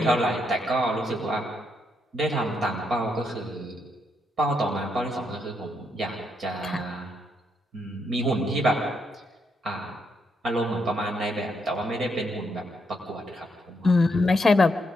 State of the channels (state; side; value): normal; both; correlation 0.78